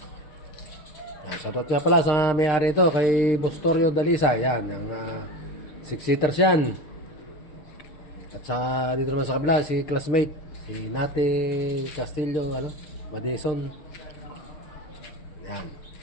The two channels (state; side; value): late; right; 6.6 ms